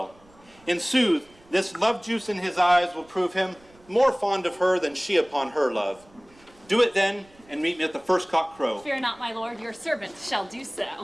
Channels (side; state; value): right; noise; rumble, 28 dB below the sound